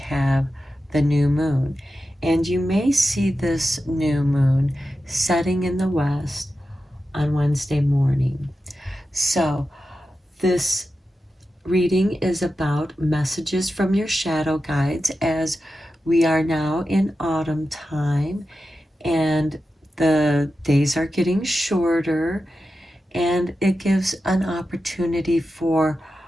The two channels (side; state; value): both; normal; correlation 0.91